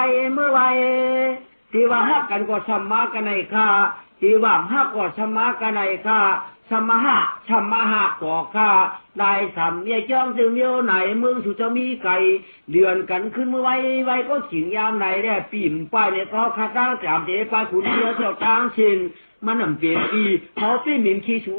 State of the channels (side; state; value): both; inverted; correlation -1.00